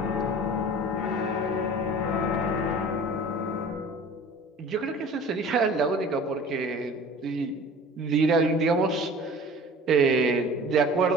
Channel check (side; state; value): both; normal; correlation 0.43